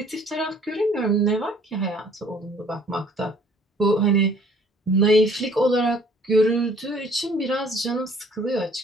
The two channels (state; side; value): normal; both; correlation 0.57